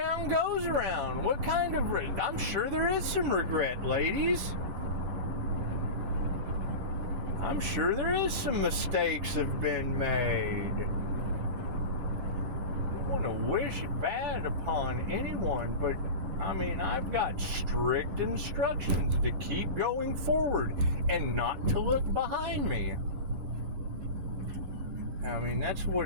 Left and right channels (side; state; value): left; late; 10 ms